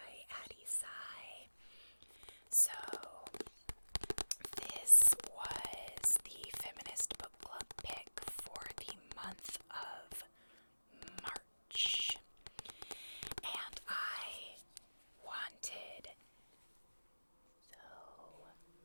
Addie Sai. So, this was the feminist book club pick for the month of March. And I wanted so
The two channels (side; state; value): both; inverted; correlation -1.00